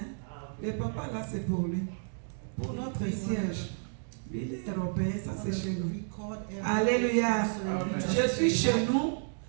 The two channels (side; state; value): left; silent; digital silence